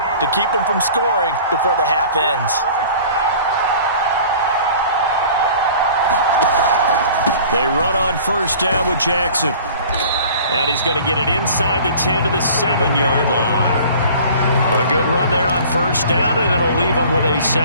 to keep them from scoring before the half ends. They run on first down with Jackson. And he's going to get it inside the 10 to the 7-yard line. A good run there on first down, and it'll leave them with a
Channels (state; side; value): inverted; both; correlation -0.46